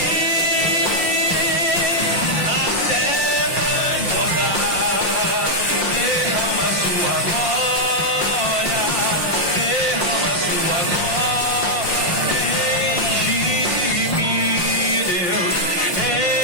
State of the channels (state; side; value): late; right; 5.7 ms